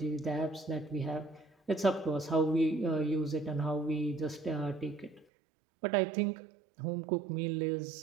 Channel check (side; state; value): left; drops out; at 5.2 s